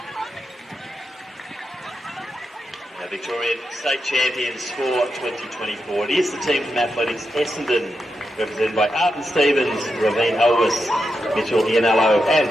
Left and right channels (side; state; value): both; normal; correlation 0.86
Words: Our Victorian State Champions for 2024. It is the team from Athletics Essendon, represented by Arden Stevens, Ravine Elvis, Mitchell Ianello, and